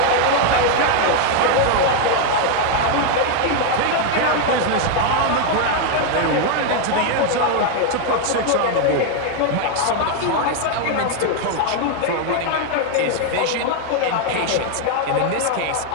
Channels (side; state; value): both; different; correlation 0.01